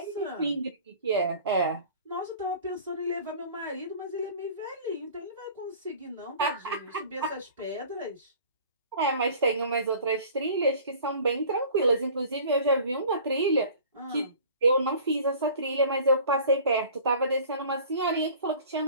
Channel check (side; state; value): both; inverted; correlation -0.46